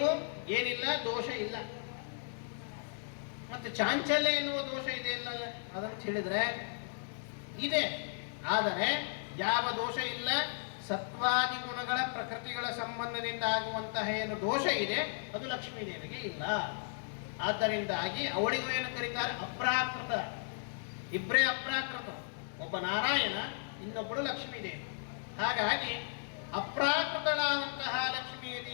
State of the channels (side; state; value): right; silent; digital silence